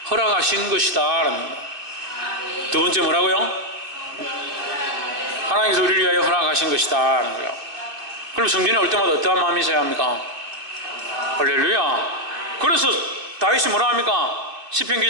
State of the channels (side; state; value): left; late; 2.5 ms